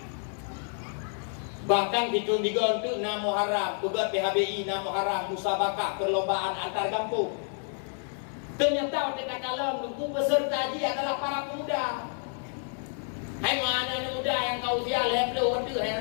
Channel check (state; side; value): silent; right; 58 dB below the other